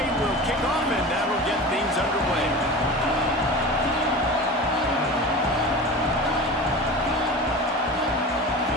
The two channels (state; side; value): normal; both; correlation 0.32